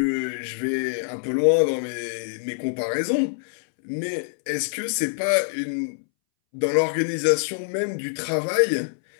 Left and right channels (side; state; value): right; silent; 62 dB below the other